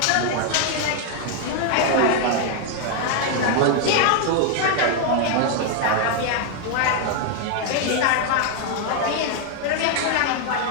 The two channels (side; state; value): both; different; correlation 0.00